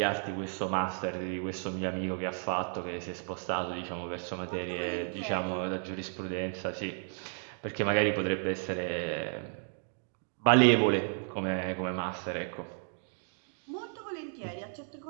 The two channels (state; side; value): silent; left; 56 dB below the other